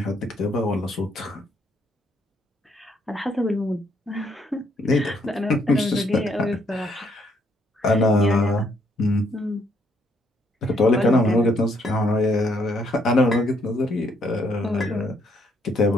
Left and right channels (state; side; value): normal; both; correlation 0.71